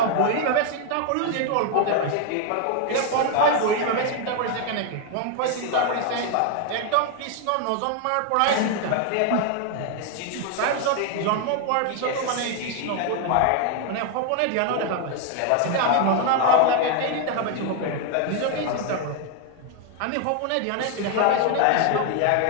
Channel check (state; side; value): different; both; correlation 0.01